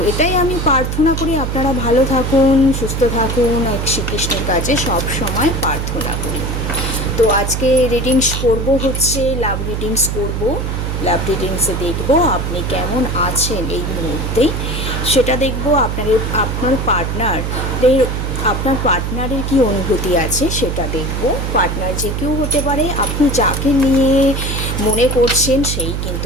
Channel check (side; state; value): right; noise; hum, 2 dB below the sound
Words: এটাই আমি প্রার্থনা করি, আপনারা ভালো থাকুন, সুস্থ থাকুন, এক শ্রীকৃষ্ণের কাছে সব সময় প্রার্থনা করি। তো আজকে রিডিংস করব হচ্ছে লাভ রিডিংস করব। লাভ রিডিংসে দেখব আপনি কেমন আছেন এই মুহূর্তে, সেটা দেখব। আপনার পার্টনারের কি অনুভূতি আছে সেটা দেখব। পার্টনার যে কেউ হতে পারে, আপনি যাকে নিয়ে মনে করছেন সেই